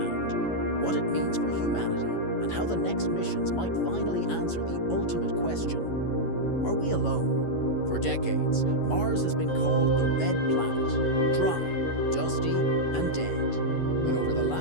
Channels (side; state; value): right; late; 11 ms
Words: what it means for humanity, and how the next missions might finally answer the ultimate question: are we alone? For decades, Mars has been called the Red Planet, dry, dusty, and dead. But over the